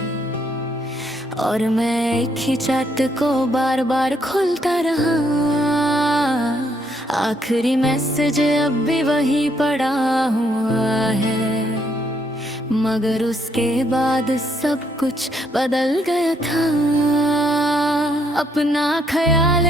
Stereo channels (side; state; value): both; normal; correlation 0.72